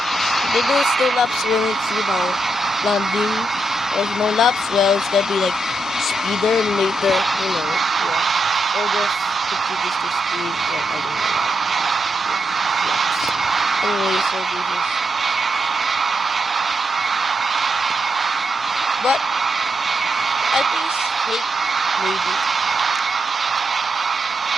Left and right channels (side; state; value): both; normal; correlation 0.83